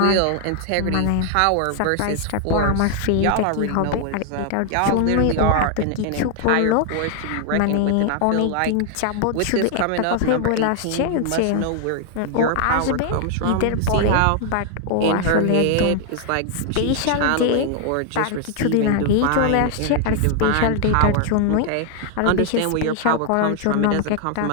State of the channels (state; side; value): different; both; correlation 0.00